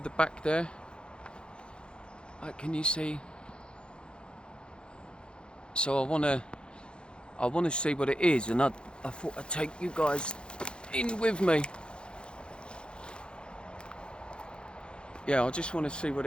the back there. Like, can you see? So I wanna see what it is, and I thought I'd take you guys in with me. Yeah, I just want to see what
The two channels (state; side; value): late; right; 0.053 ms